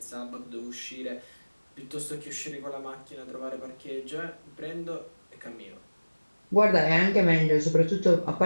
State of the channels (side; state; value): both; inverted; correlation -1.00